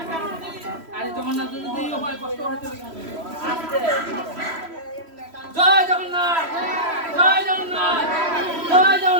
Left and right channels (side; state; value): left; late; 3.1 ms